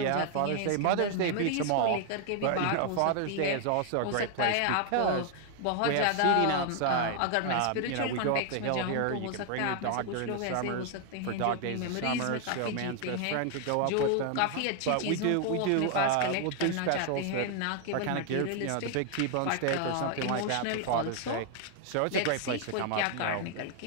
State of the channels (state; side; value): different; both; correlation 0.00